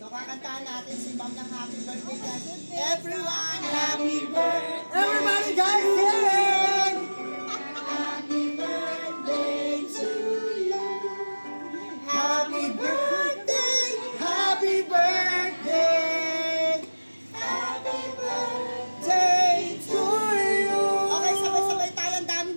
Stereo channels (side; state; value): both; inverted; correlation -1.00